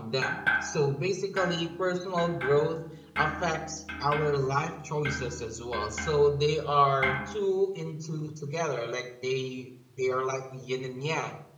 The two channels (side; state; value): both; identical; correlation 1.00